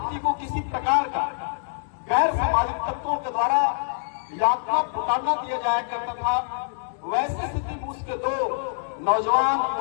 को किसी प्रकार का गैर सामाजिक तत्वों के द्वारा यातना पुकारना दिया जाया करता था। वैसी स्थिति में उसके दो नौजवान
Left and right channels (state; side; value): silent; right; digital silence